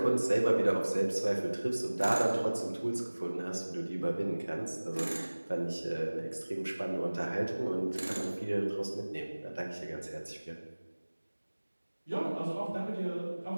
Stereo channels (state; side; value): inverted; both; correlation -1.00